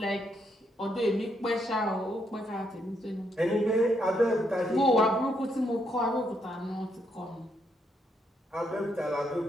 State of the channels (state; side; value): normal; both; correlation 0.76